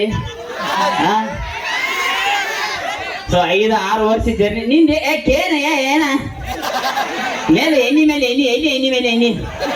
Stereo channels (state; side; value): identical; both; correlation 1.00